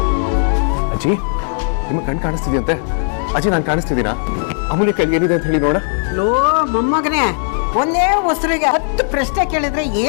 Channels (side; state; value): right; silent; digital silence